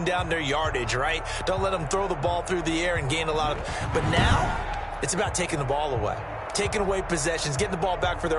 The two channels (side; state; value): both; identical; correlation 1.00